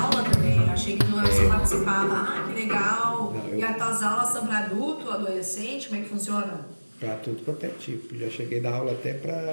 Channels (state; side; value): inverted; both; correlation -1.00